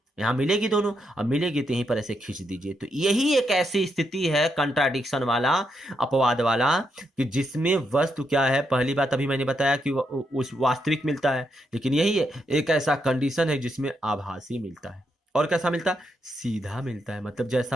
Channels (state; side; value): normal; both; correlation 0.80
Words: यहाँ मिलेगी दोनों, अब मिलेगी तो यहीं पर ऐसे खींच दीजिए। तो यही एक ऐसी स्थिति है कंट्राडिक्शन वाला, अपवाद वाला, कि जिसमें वस्तु क्या है, पहली बात अभी मैंने बताया कि उस वास्तविक मिलता है, लेकिन यही है एक ऐसा कंडीशन है जिसमें आभासी मिलता है। और कैसा मिलता है, सीधा मिलता है, मतलब